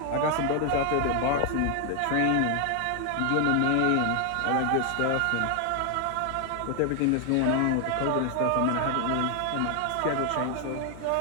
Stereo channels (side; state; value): both; different; correlation 0.00